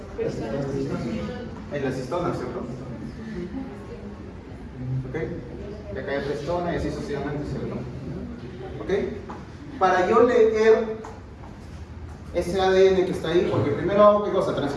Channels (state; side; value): identical; both; correlation 1.00